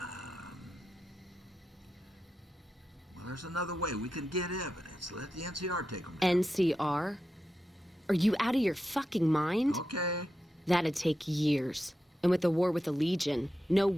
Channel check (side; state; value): both; normal; correlation 0.89